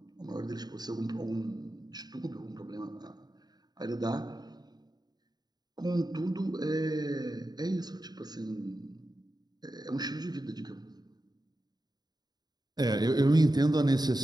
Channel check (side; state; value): left; late; 0.20 ms